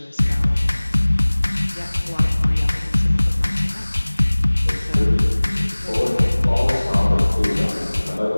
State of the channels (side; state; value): both; inverted; correlation -1.00